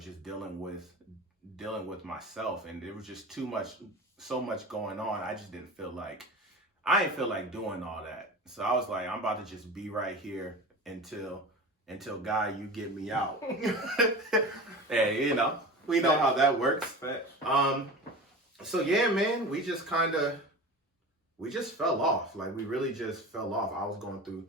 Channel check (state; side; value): normal; both; correlation 0.33